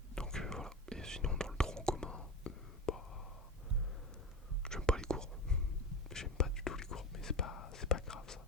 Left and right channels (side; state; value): both; normal; correlation 0.25